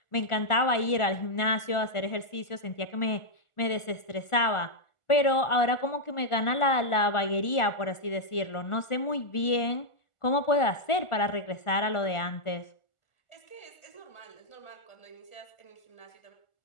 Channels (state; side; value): late; right; 1.4 ms